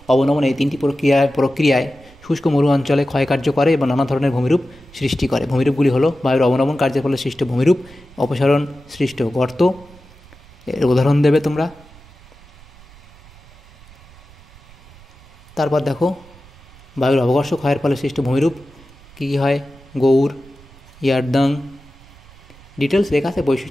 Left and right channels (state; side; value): noise; right; rumble, 24 dB below the sound